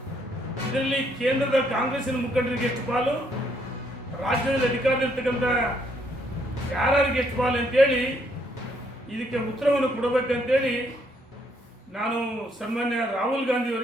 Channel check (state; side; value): normal; both; correlation 0.70